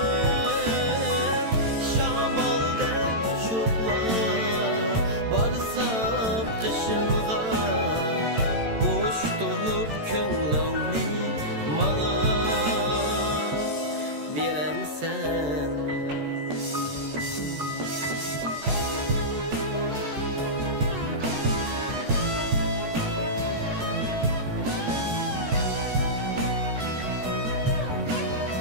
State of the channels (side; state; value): left; late; 13 ms